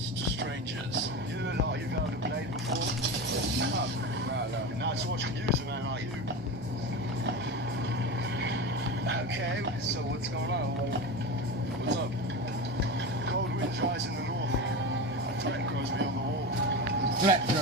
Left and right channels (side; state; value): both; normal; correlation 0.24